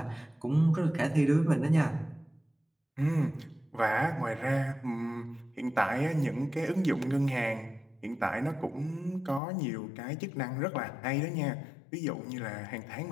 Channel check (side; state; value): right; drops out; at 9.4 s